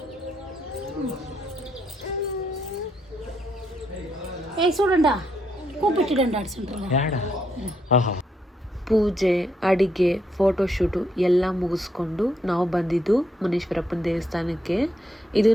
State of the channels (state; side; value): normal; both; correlation 0.76